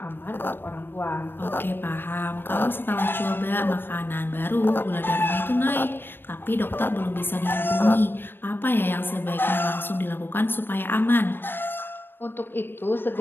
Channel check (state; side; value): late; right; 0.098 ms